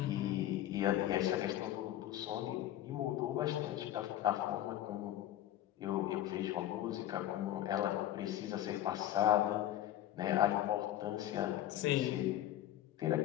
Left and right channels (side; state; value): right; quieter; 12.8 dB